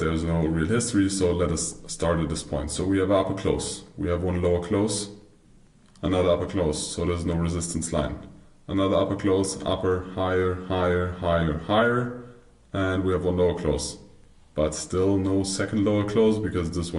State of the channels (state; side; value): identical; both; correlation 1.00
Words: no real history, so let us start at this point. So we have an upper close, we have one lower close, another upper close, so there's no resistance line. Another upper close, upper, higher, higher, higher, higher, and we have one lower close. But still no second lower close, because this